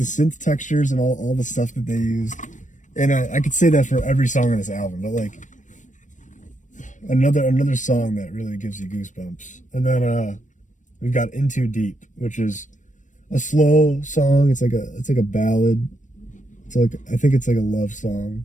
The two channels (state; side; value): late; right; 0.36 ms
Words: textures and all the stuff that they used. And I could say that for every song on this album, but like another song that really gives you goosebumps. And then we've got In Too Deep, which is a slow song. It's like a ballad. I think it's like a love